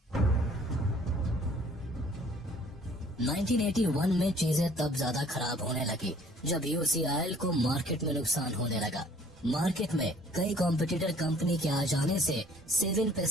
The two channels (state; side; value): normal; both; correlation 0.56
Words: 1981 में चीजें तब ज्यादा खराब होने लगी जब यूसीआईएल को मार्केट में नुकसान होने लगा। मार्केट में कई कॉम्पिटिटर कंपनी के आ जाने से 7